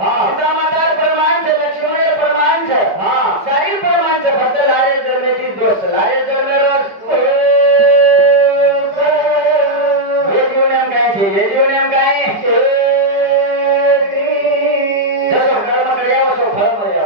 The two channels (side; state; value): left; late; 5.0 ms